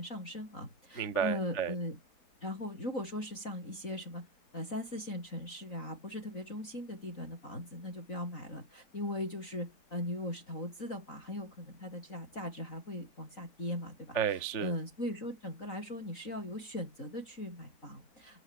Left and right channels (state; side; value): late; right; 3.9 ms